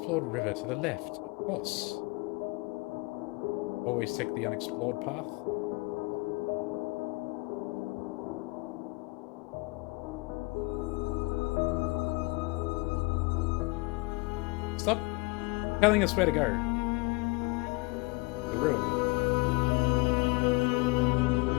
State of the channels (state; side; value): quieter; right; 25.7 dB